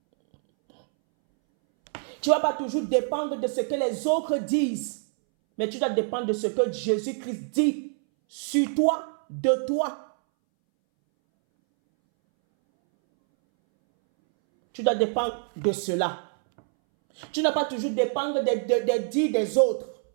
Tu ne vas pas toujours dépendre de ce que les autres disent, mais tu dois dépendre de ce que Jésus-Christ dit sur toi, de toi. Tu dois dépendre de cela. Tu ne dois pas toujours dépendre des dits des autres.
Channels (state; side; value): silent; left; 61 dB below the other